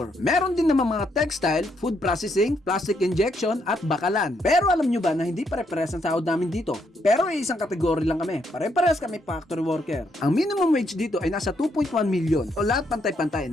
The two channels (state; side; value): normal; both; correlation 0.75